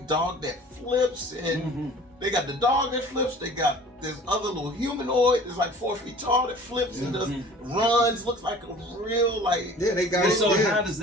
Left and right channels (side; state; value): both; normal; correlation 0.46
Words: dog that flips, and they got the dog that flips. They got this other little humanoid that's like 4 feet tall that flips and just runs. Looks like a real they got it. So how does